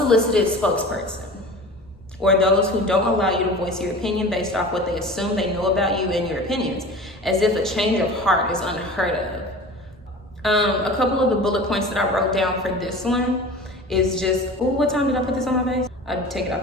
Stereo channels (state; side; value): normal; both; correlation 0.37